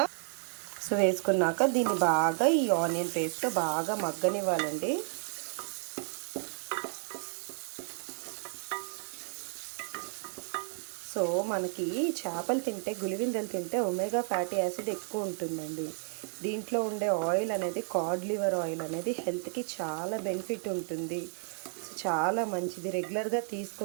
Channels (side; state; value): left; silent; 56 dB below the other